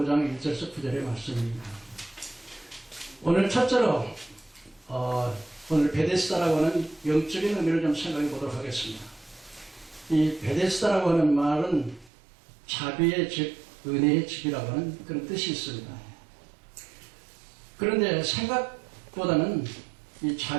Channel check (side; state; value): left; drops out; at 12.1 s